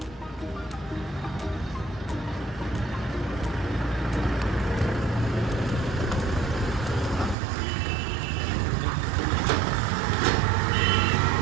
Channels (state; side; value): drops out; left; at 7.4 s